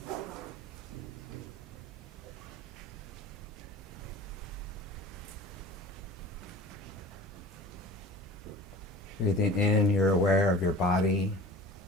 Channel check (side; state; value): both; normal; correlation 0.40